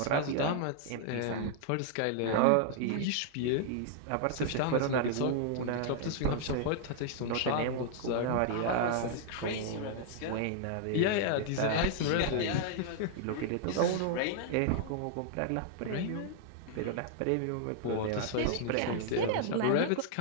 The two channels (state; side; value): different; both; correlation -0.01